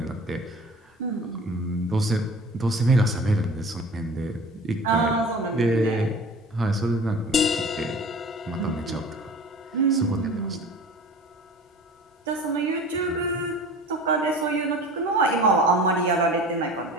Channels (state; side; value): normal; both; correlation 0.41